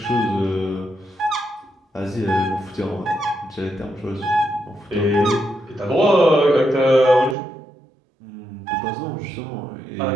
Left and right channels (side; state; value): left; drops out; at 7.4 s